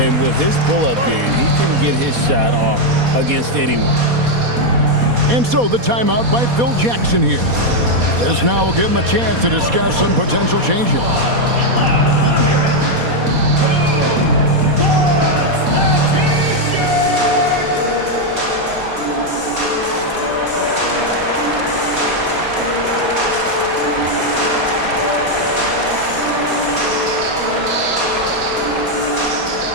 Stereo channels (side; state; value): left; late; 4.2 ms